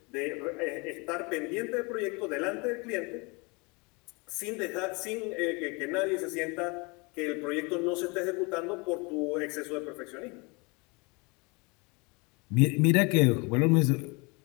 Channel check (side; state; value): right; quieter; 28.7 dB